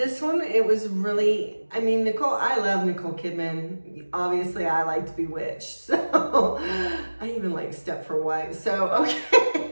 one, it was really, I love Nicole Kidman. Obviously, I liked Bewitched, so I even like Stepford Wives. So,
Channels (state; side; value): inverted; both; correlation -1.00